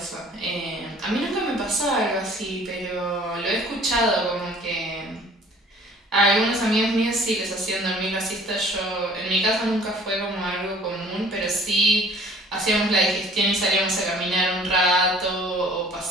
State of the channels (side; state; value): both; normal; correlation 0.52